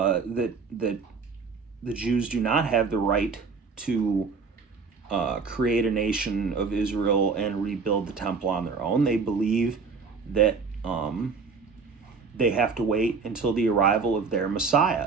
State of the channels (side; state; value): left; quieter; 5.0 dB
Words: the Jews do not have the right to create a nation of Israel and rebuild the temple on their own. They believe that they have to wait until the arrival of their